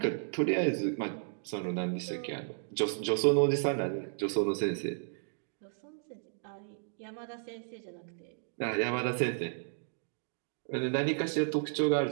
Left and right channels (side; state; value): left; silent; digital silence